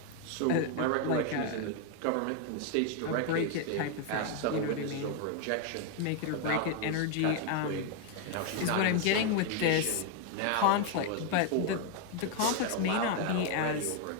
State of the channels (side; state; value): both; different; correlation 0.01